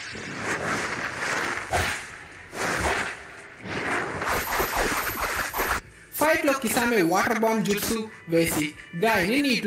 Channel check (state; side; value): identical; both; correlation 1.00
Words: ఫైట్ లో కిసామె వాటర్ బాంబ్ జుట్సు వేసి గాయని